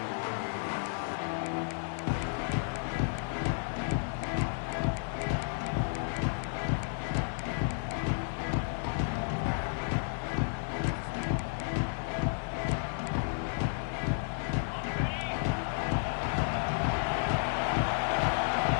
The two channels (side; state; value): right; silent; 56 dB below the other